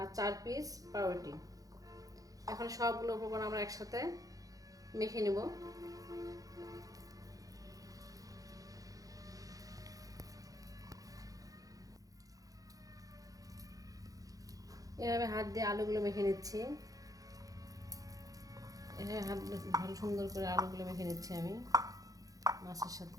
4 পিস পাউরুটি। এখন সবগুলো উপকরণ আমরা একসাথে মেখে নেব। এভাবে হাত দিয়ে আলুগুলো মেখে নিচ্ছি। এভাবে হাত দিয়ে ভালো সুন্দর করে আলুগুলো মেখে নিচ্ছি আমি মাছের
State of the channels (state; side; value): late; left; 0.17 ms